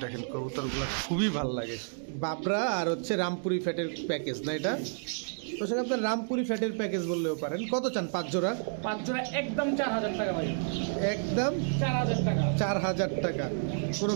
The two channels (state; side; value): silent; left; digital silence